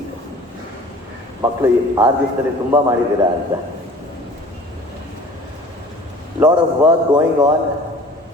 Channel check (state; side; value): normal; both; correlation 0.45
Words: ಮಕ್ಕಳು 6 ದಿವಸದಲ್ಲಿ ತುಂಬ ಮಾಡಿದ್ದೀರಾ ಅಂತ. Lot of work going on.